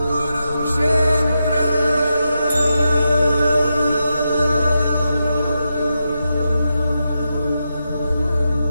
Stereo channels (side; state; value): both; inverted; correlation -0.87